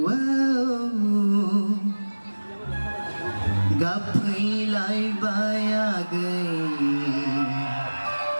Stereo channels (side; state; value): both; inverted; correlation -1.00